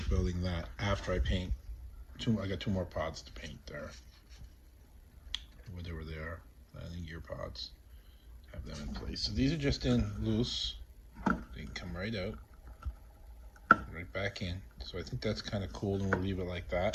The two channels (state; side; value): identical; both; correlation 1.00